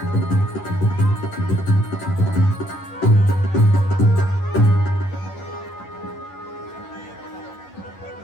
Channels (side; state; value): right; late; 11 ms